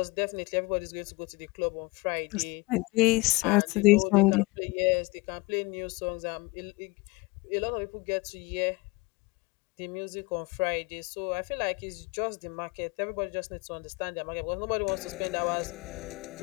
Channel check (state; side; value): quieter; right; 25.4 dB